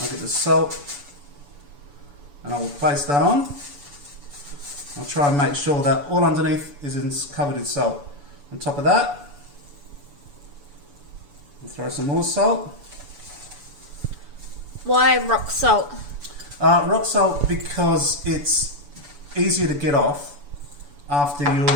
get the salt, and I will place that on. I'll try and make sure that all underneath is covered in salt. On top of that, We'll throw some more salt. Why rock salt? Rock salt because it's easier to get off after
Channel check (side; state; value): left; late; 7.0 ms